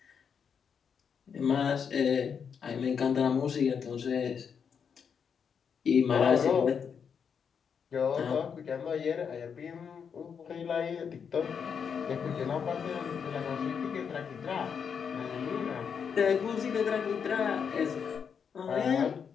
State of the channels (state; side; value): quieter; right; 6.8 dB